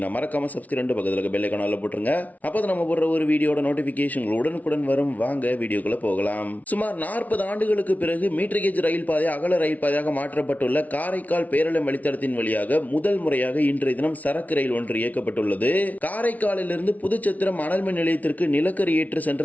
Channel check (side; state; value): right; late; 0.072 ms